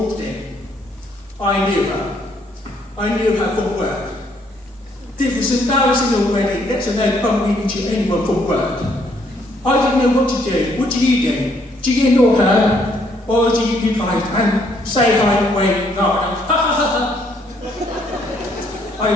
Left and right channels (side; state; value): both; normal; correlation 0.69